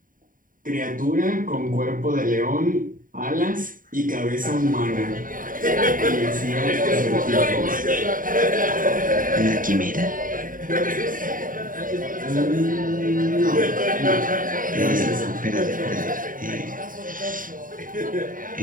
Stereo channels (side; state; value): left; late; 0.40 ms